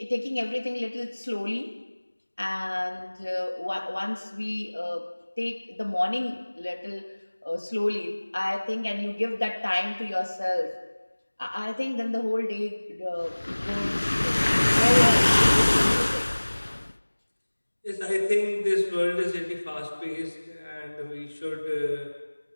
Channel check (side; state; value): both; inverted; correlation -1.00